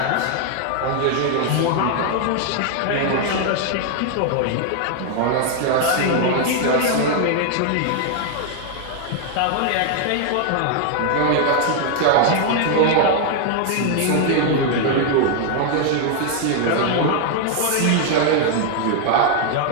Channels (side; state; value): both; different; correlation 0.00